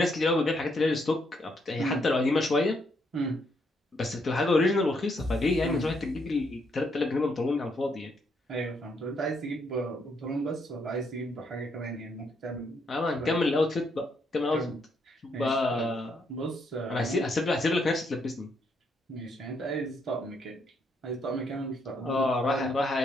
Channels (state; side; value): normal; both; correlation 0.74